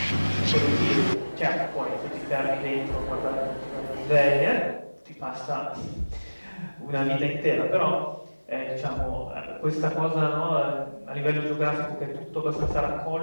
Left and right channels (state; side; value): inverted; both; correlation -1.00